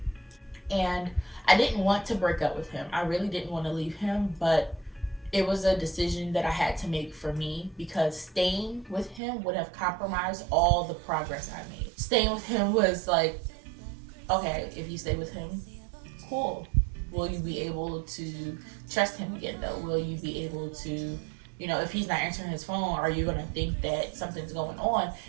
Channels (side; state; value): left; drops out; at 9.2 s